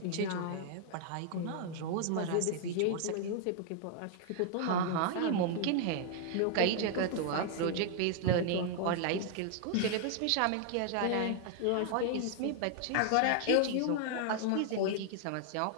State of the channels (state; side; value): different; both; correlation 0.00